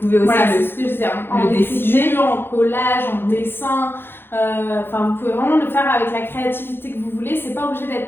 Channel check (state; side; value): late; right; 0.10 ms